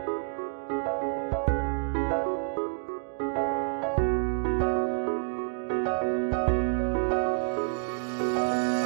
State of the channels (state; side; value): silent; left; digital silence